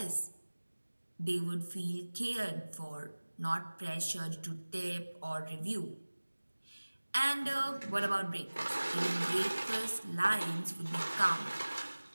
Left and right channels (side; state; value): both; inverted; correlation -1.00